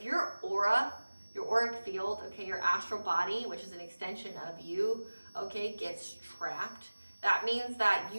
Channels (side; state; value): both; inverted; correlation -1.00